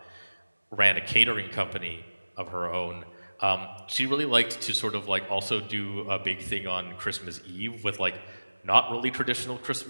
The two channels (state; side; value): inverted; both; correlation -1.00